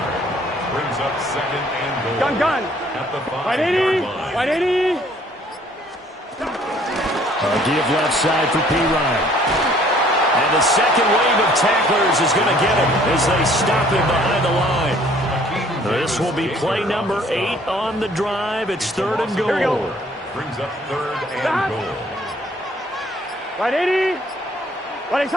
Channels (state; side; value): normal; both; correlation 0.58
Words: Brings up second and goal. Gun. At the 180. 180. Give left side for P-Ryan. And the second wave of tacklers is going to get him as they stop him behind the line. This will be play number 8 on the drive. It's third and goal. Here we go. Brings up third and goal. 180.